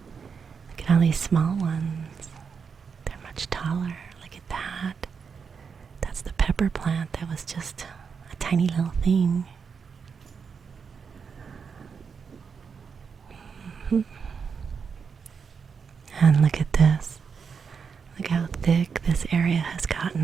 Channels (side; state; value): left; quieter; 6.0 dB